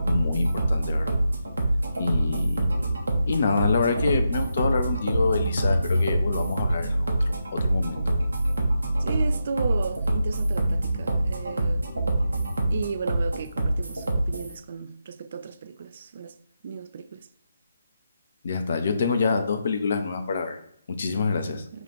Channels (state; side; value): inverted; both; correlation -0.85